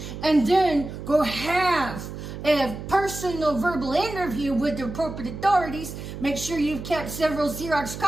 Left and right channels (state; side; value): noise; right; hum, 9 dB below the sound